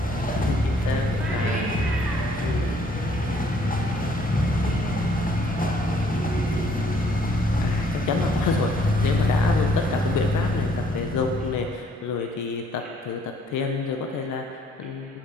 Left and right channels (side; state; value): both; normal; correlation 0.64